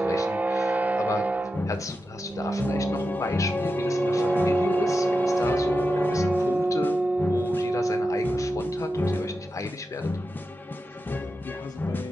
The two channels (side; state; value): both; normal; correlation 0.90